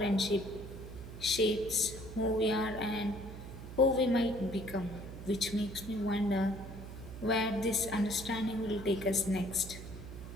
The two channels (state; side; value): noise; right; hum, 11 dB below the sound